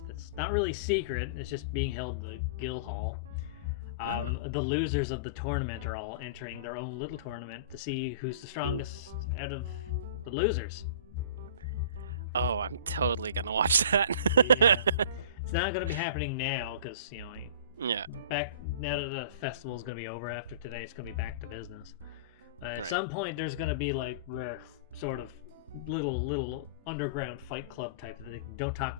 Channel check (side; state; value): both; inverted; correlation -0.37